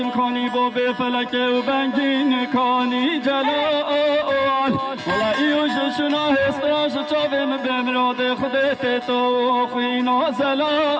کنی با به فلک و بنگین کنی جلال ولا ایوش شنا هستراش چاویم بمراد خودت تو خوینا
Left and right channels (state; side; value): identical; both; correlation 1.00